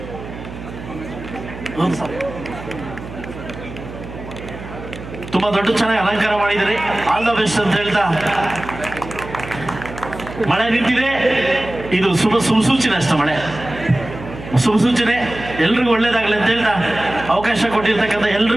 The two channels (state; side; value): noise; right; hum, 12 dB below the sound